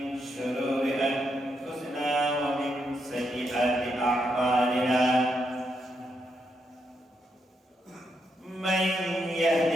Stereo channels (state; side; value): normal; both; correlation 0.80